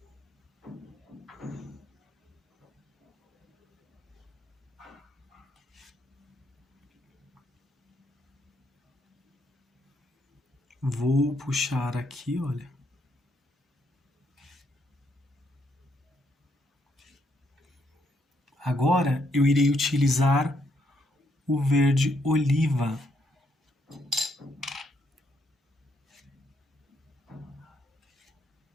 Vou puxar aqui, olha. Agora eu irei utilizar o verde oliva.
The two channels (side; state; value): both; normal; correlation 0.74